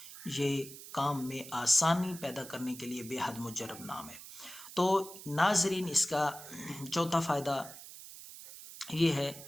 یہ کام میں آسانی پیدا کرنے کے لیے بے حد مجرب نام ہے۔ تو ناظرین، اس کا چوتھا فائدہ یہ ہے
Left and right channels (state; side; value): noise; right; hiss, 14 dB below the sound